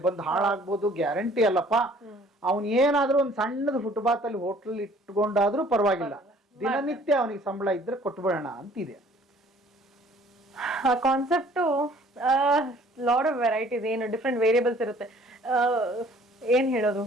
ಬಂದು ಹಾಳಾಗ್ಬೋದು, ಗ್ಯಾರಂಟಿ ಅಲ್ಲಪ್ಪ. ಅವನ್ ಏನಾದ್ರೂ ಒಂದ್ ಸಣ್ಣದ ಫುಟ್ಪಾತ್ ಅಲ್ಲಿ ಹೋಟ್ಲ್ ಇಟ್ಕೊಂಡಾದ್ರೂ ಪರವಾಗಿಲ್ಲ, ದಿನನಿತ್ಯ ಅವನಿಗೆ ಸಂಬಳ ಇದ್ರೆ ಕೊಟ್ಬಿಡೋಣ ಅಂತಿದೆ. ಆ ಕಾನ್ಸೆಪ್ಟ್ ಲಾಟ್ ಆಫ್ ವೆರೈಟೀಸ್, ಏನು ಡಿಫ್ರೆಂಟ್ ವೇರಿಯಬಲ್ಸ್ ಇರುತ್ತೆ. ಏನ್ ಹೇಳೋದು,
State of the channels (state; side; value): normal; both; correlation 0.55